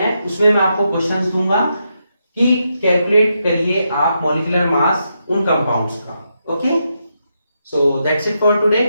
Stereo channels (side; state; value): both; inverted; correlation -0.83